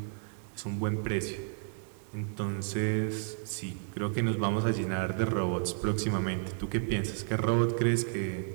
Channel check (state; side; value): silent; left; 56 dB below the other